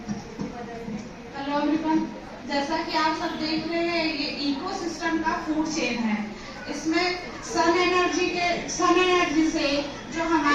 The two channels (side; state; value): both; identical; correlation 1.00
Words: हेलो एवरीवन, जैसा कि आप सब देख रहे हैं ये इकोसिस्टम का फूड चेन है। इसमें सन एनर्जी से जो